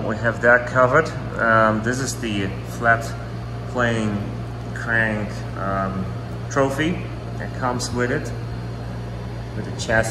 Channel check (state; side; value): identical; both; correlation 1.00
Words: we have that covered. This is the flat plane crank trophy that comes with it, with the